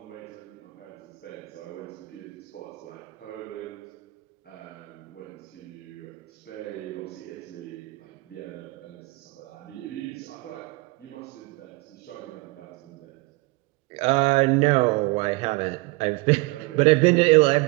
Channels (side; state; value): left; quieter; 24.3 dB